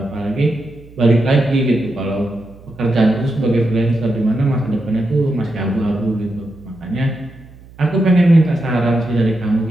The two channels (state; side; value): noise; right; hum, 22 dB below the sound